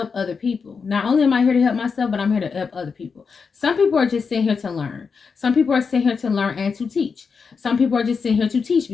other people. Not only am I here to help myself, but I'm here to help other people. Some people are just sitting here to learn. Some people are sitting here to learn and to teach. Some people are just sitting here to teach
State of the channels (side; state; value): right; quieter; 5.4 dB